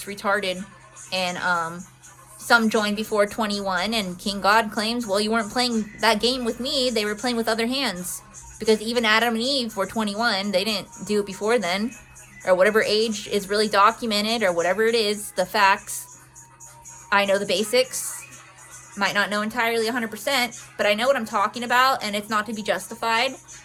retarded. And some joined before 21, and King God claims, well, you weren't playing that game with me. They were playing with other hands. Because even Adam and Eve were 21. They didn't do it before then. Or whatever age is really documented, or whatever it is, the facts. I know the basics, might not know entirely 100%, but I know what I'm talking about, and it's not to be justified.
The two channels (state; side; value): identical; both; correlation 1.00